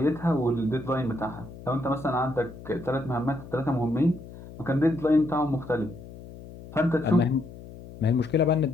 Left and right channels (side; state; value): left; noise; hum, 16 dB below the sound